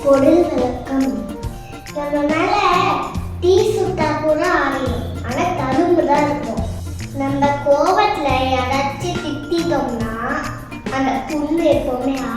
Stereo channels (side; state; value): both; identical; correlation 1.00